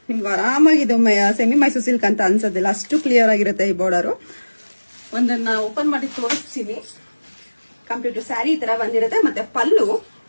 ನಿಮ್ಗೆ ಆರಾಮಾಗಿ ಇದು ಸೆಮಿ ಮೈಸೂರು ಸಿಲ್ಕ್ ಅಂತ ಅನ್ಸೋದಿಲ್ಲ, ಅಷ್ಟು ಕ್ಲಿಯರ್ ಆಗಿರುತ್ತೆ ಈ ಬಾರ್ಡರ್. ಒಂದನ್ನ ಓಪನ್ ಮಾಡಿ ತೋರಿಸ್ತೀನಿ. ಕಂಪ್ಲೀಟ್ ಸ್ಯಾರಿ ಈ ತರ ಬಂದಿರುತ್ತೆ. ಮತ್ತೆ ಪಲ್ಲು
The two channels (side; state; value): both; inverted; correlation -1.00